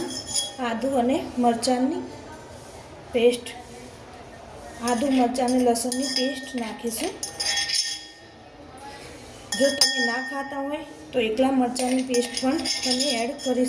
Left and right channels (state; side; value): identical; both; correlation 1.00